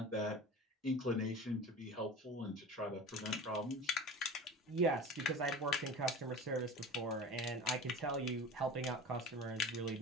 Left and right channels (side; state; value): both; normal; correlation 0.36